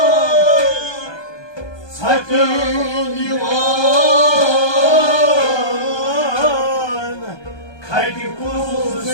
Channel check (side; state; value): right; late; 1.2 ms